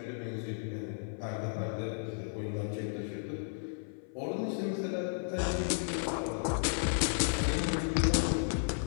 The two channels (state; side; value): silent; right; 55 dB below the other